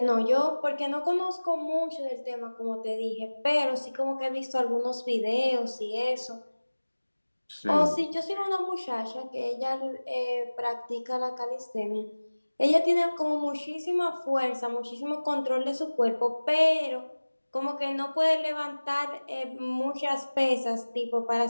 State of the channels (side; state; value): both; inverted; correlation -1.00